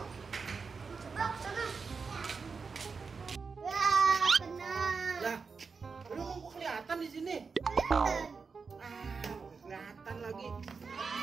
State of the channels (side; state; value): left; quieter; 5.0 dB